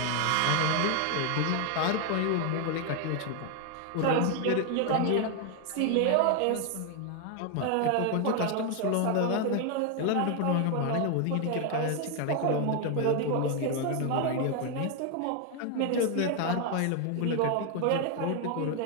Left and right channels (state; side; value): different; both; correlation 0.01